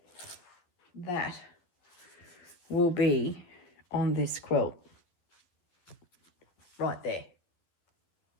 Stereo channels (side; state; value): right; late; 12 ms